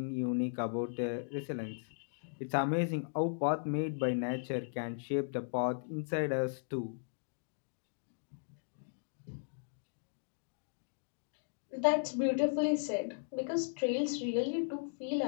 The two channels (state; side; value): silent; right; digital silence